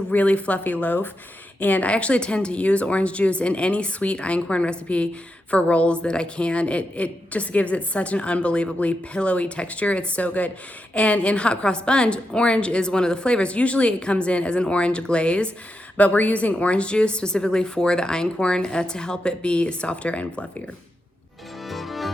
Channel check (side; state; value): both; normal; correlation 0.86